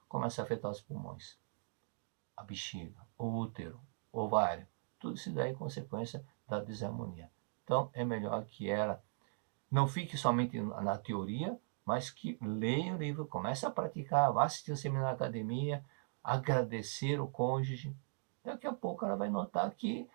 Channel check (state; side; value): silent; left; digital silence